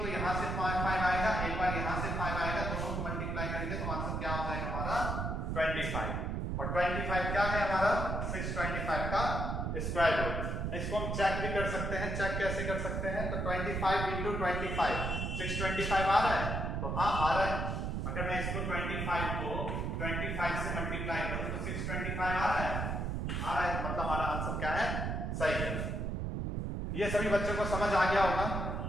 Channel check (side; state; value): right; noise; rumble, 1 dB below the sound